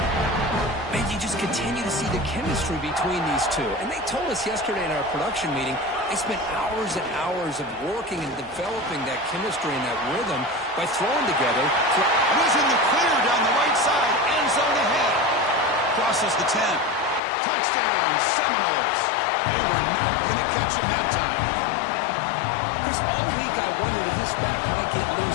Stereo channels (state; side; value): drops out; right; at 17.2 s